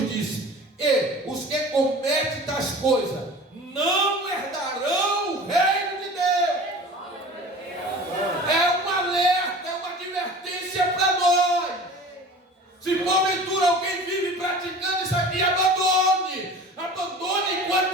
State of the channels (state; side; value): normal; both; correlation 0.39